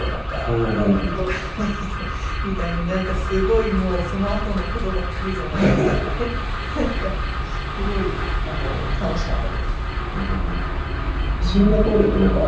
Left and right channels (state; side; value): identical; both; correlation 1.00